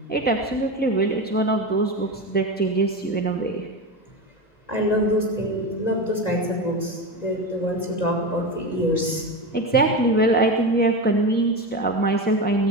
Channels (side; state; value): right; late; 1.9 ms